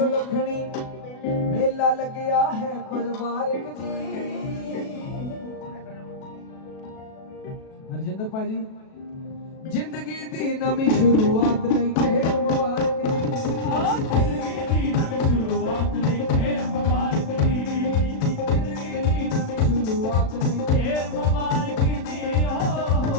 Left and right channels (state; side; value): late; right; 37 ms